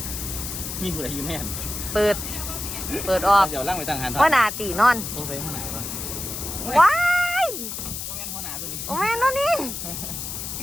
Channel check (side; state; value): left; noise; hiss, 6 dB below the sound